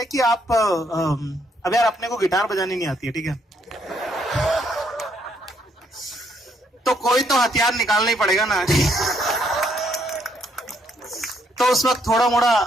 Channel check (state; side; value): normal; both; correlation 0.72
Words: कि आप अब यार अपने को गिटार बजानी नहीं आती है, ठीक है, तो कोई तो हथियार निकालना ही पड़ेगा ना। तो उस वक्त थोड़ा